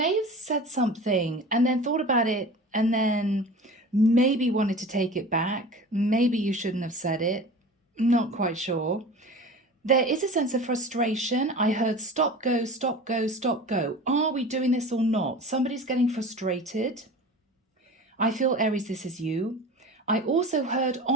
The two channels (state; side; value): normal; both; correlation 0.37